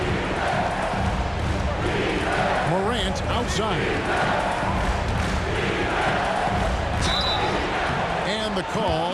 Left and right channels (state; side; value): identical; both; correlation 1.00